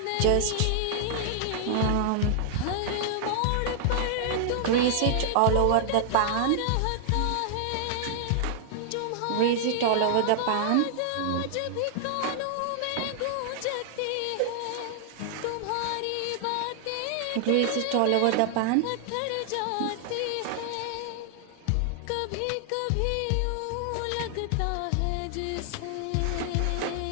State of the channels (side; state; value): both; different; correlation 0.00